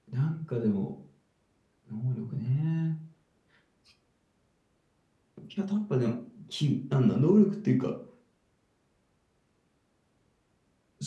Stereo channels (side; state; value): both; identical; correlation 1.00